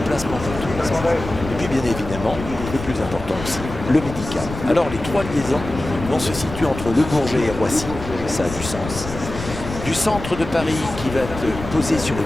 pour tourisme. Et puis bien évidemment, le plus important aussi, le médical. Alors les 3 liaisons vont se situer entre Le Bourget et Roissy, ça a du sens. Du centre de Paris qui va être posé sur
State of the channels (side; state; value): left; noise; rumble, 10 dB below the sound